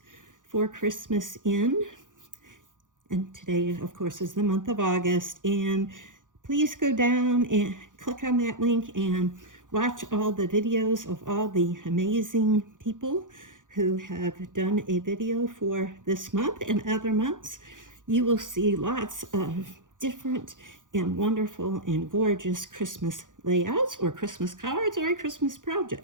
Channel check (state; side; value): late; left; 0.88 ms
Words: for Christmas in. And today, of course, is the month of August. And please go down and click on that link and watch all the videos of all the amazing people who have done a video for this month and other months. You will see lots of different and wonderful and gorgeous Christmas layouts or Christmas cards or a Christmas